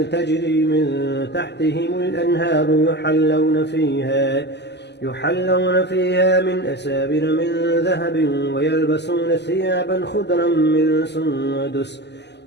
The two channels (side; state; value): right; late; 0.50 ms